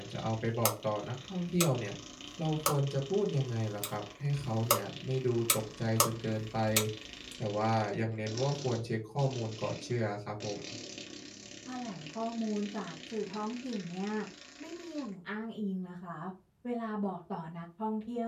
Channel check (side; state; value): both; identical; correlation 1.00